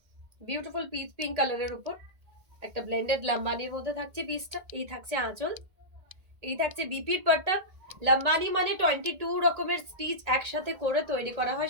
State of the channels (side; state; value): left; late; 1.8 ms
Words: Beautiful pitch pink কালারের উপর একটা ব্লেন্ডেড লাম্বানির মধ্যে থাকছে পিসটা। এই থাকছে আঁচল, এই থাকছে বিপির পাট্টা। লাম্বানি মানে 22 রকমের স্টিচ একসাথে করে তৈরি করা